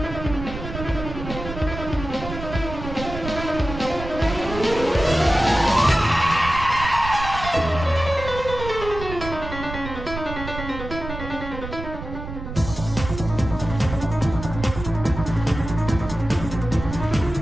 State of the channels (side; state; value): right; noise; rumble, 9 dB below the sound